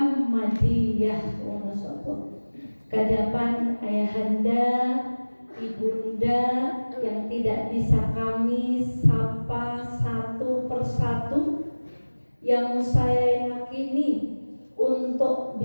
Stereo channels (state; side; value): inverted; both; correlation -1.00